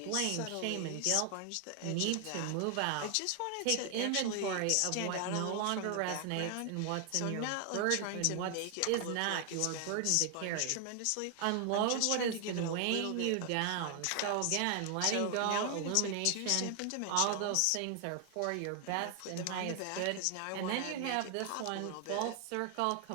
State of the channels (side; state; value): both; different; correlation 0.00